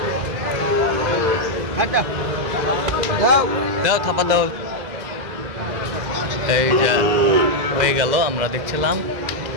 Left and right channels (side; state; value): left; late; 2.0 ms